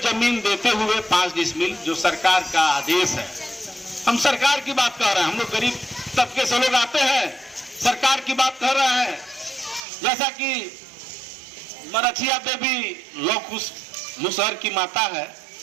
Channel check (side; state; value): left; drops out; at 9.9 s